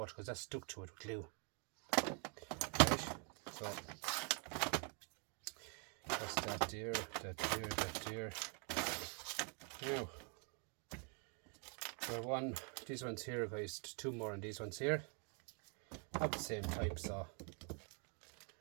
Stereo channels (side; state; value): left; quieter; 38.9 dB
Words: because that's stuck to it with glue. Right? So, that's that there, that there. Now, for these ones here, guys, 2 more on these ones here. Of the same type, so